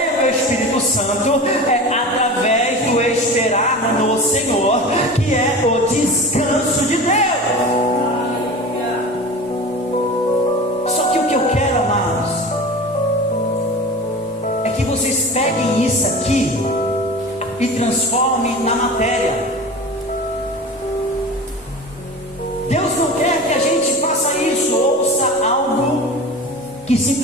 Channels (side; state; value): both; normal; correlation 0.34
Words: do Espírito Santo? É através do esperar no Senhor, que é o descanso de Deus. Só que o que eu quero, amados, é que vocês peguem isso aqui e transformem na matéria. Deus não quer que a gente faça isso, ouça algo que